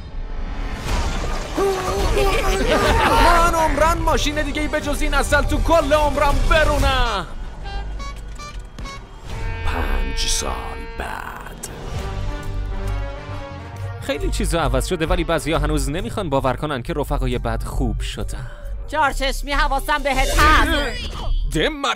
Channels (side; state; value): both; identical; correlation 1.00